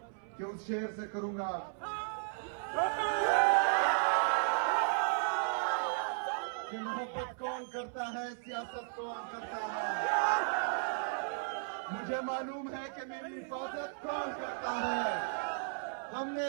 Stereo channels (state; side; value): silent; left; 54 dB below the other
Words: के उस शेर से करूंगा। कि मोहब्बत कौन करता है, सियासत कौन करता है। मुझे मालूम है कि मेरी हिफाजत कौन करता है। हमने